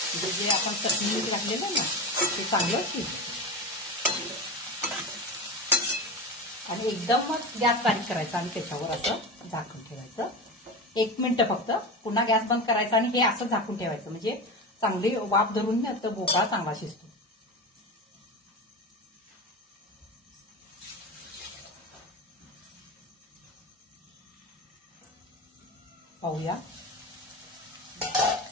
म्हणजे जे आपण चटणी मीठ घातलेलं ना ते चांगलं शिजतं। आणि एकदम मग गॅस बारीक करायचा आणि त्याच्यावर असं झाकून ठेवायचं 1 मिनिट फक्त, पुन्हा गॅस बंद करायचा आणि हे असं झाकून ठेवायचं, म्हणजे चांगली वाफ धरून तर भोपळा चांगला शिजतो। पाहूया,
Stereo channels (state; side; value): normal; both; correlation 0.24